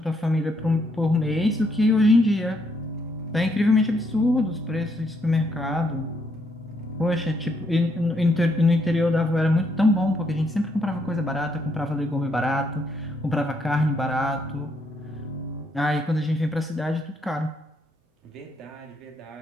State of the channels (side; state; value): both; normal; correlation 0.74